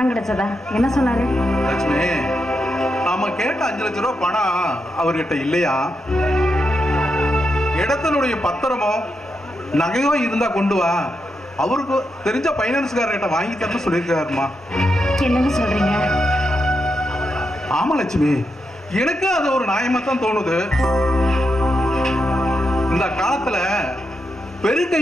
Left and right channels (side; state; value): both; normal; correlation 0.85